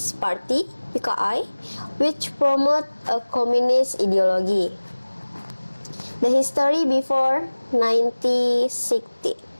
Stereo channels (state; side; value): inverted; both; correlation -1.00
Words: Party, PKI, which promoted a communist ideology. The history before 1960.